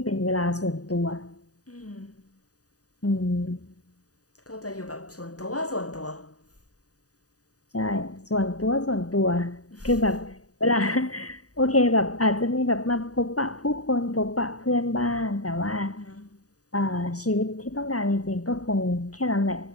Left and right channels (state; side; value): late; right; 0.67 ms